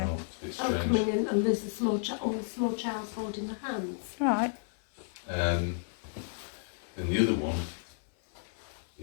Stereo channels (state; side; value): silent; right; 56 dB below the other